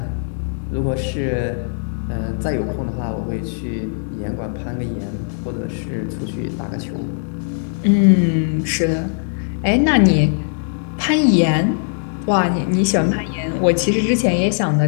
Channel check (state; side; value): silent; right; 66 dB below the other